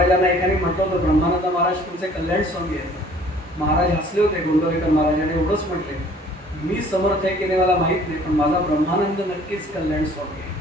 एकाने म्हटलं होतं, ब्रह्मानंद महाराज तुमचे कल्याण स्वामी आहेत. महाराज हसले होते, गोंदवलेकर महाराजांनी एवढंच म्हटले, मी समर्थ आहे की नाही मला माहित नाही, पण माझा ब्रह्मानंद नक्कीच कल्याण स्वामी आहे.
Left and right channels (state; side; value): normal; both; correlation 0.54